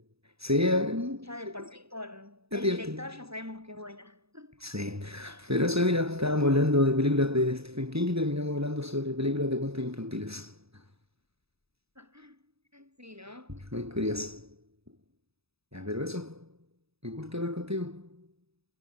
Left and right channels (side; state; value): left; late; 0.78 ms